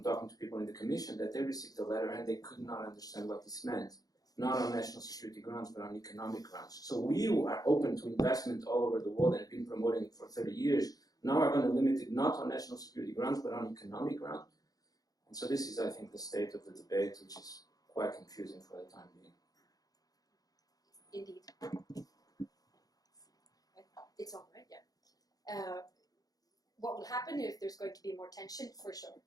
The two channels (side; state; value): right; late; 0.18 ms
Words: talking to people in the Commission, that they received the letter and they could not understand what this meant. Not on national security grounds, but on economic grounds. So we are open to investment all over the world and have been promoting it for 30 years. Now we're going to limit it not on national security grounds, but on economic grounds. And so this is, I think, the state of the debate, which is quite confusing for the time being. Indeed. It's all right, yeah. What will happen if there's going to be more tension? For sure.